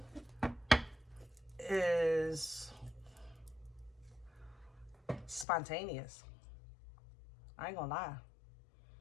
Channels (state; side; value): drops out; right; at 5.5 s